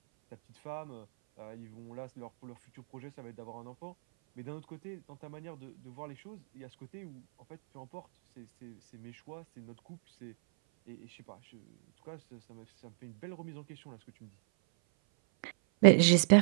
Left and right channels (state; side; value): silent; left; 55 dB below the other